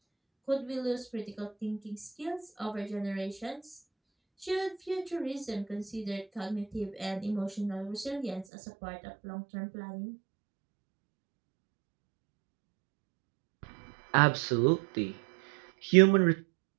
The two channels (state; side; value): drops out; left; at 8.5 s